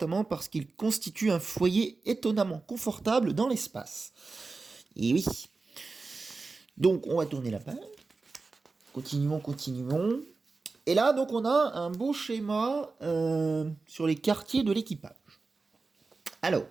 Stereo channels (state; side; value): quieter; left; 4.0 dB